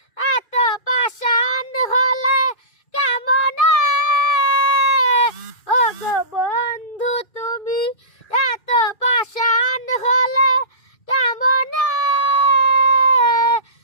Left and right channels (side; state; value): right; late; 2.3 ms